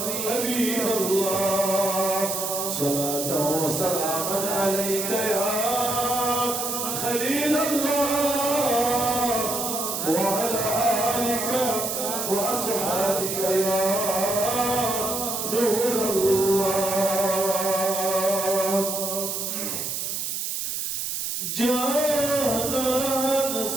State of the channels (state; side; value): noise; right; hiss, 3 dB below the sound